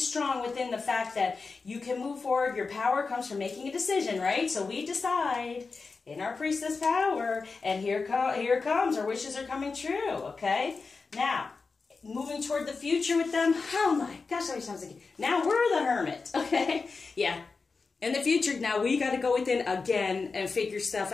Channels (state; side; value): quieter; right; 4.4 dB